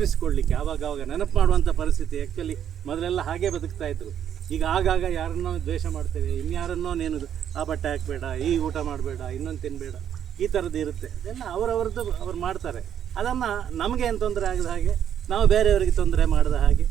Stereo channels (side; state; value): left; quieter; 9.5 dB